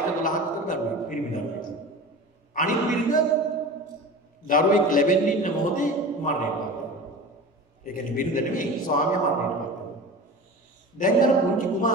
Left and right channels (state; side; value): normal; both; correlation 0.34